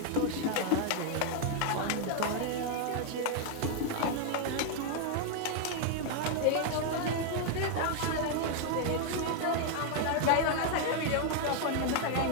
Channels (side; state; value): both; different; correlation 0.00